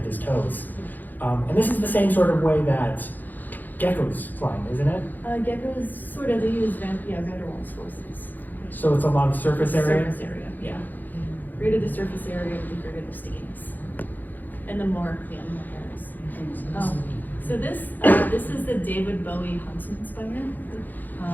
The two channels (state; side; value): late; right; 0.085 ms